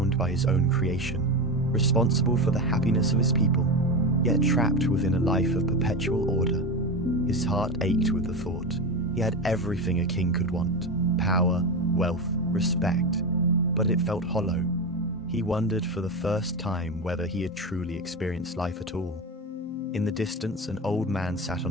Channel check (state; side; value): normal; both; correlation 0.20